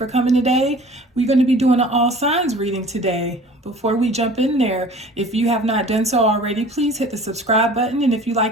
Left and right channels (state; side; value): normal; both; correlation 0.46